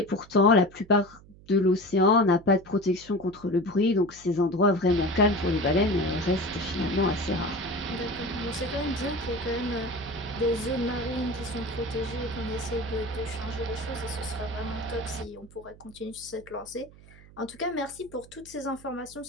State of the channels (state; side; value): noise; right; hum, 22 dB below the sound